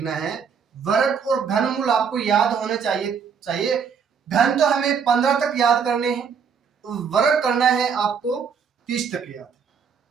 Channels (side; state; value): left; quieter; 6.6 dB